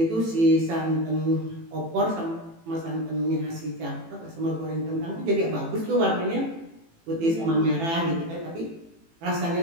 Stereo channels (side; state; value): left; late; 18 ms